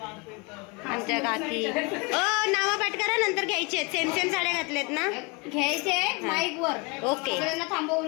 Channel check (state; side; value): quieter; right; 28.2 dB